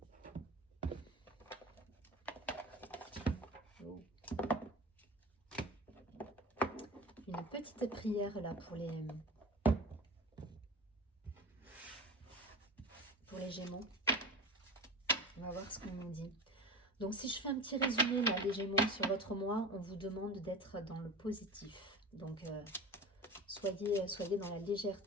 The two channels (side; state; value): both; normal; correlation 0.32